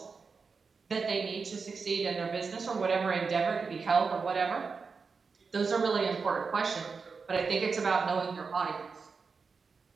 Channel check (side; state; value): left; quieter; 5.0 dB